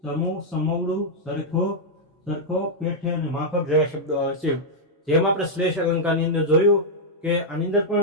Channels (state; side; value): normal; both; correlation -0.04